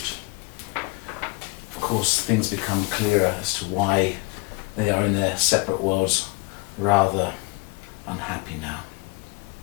Of course, things become clearer as to why they are in their separate worlds, rather unhappy now.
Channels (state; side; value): quieter; right; 27.9 dB